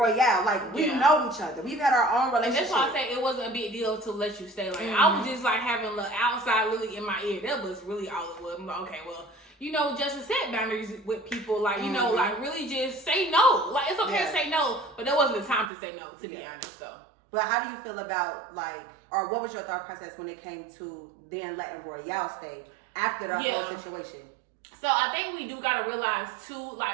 Like, we know each other. We've had our own relationship. And that's why I say it wasn't a big deal to let you stay. Like, I was just like having the outside Lily in my ear. That was really all it was. I'm like, okay, well, you know, Justice set boundaries with people. Like, you know, like really just say no. Like, it's okay to say no, but that wasn't the time to say no, to be honest. So. But how do you feel about, like, or what was your thought process when it came to then letting Royale stay after the whole situation? So I think we do gotta realize too,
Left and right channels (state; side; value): drops out; left; at 15.7 s